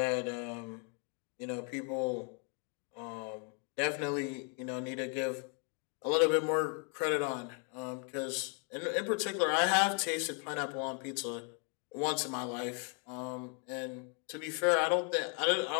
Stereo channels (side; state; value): right; quieter; 37.5 dB